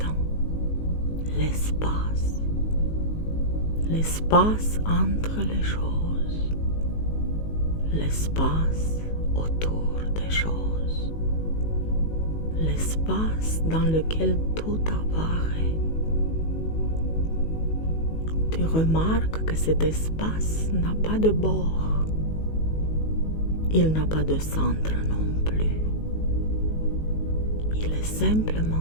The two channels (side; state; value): right; late; 19 ms